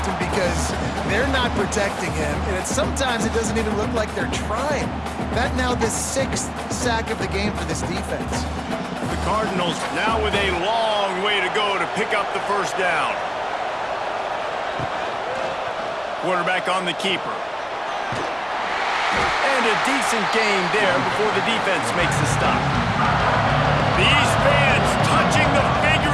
because they're not protecting him. And sometimes it doesn't even look like they're trying. That now the 6th sack of the game for this defense. The Cardinals now with a long way to go to pick up the first down. Quarterback on the keeper. And a decent gain there before the defense makes the stop. These fans touching the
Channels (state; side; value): identical; both; correlation 1.00